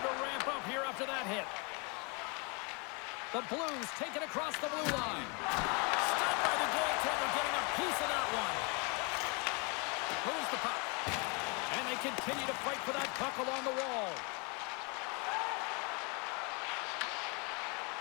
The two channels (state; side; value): quieter; right; 32.5 dB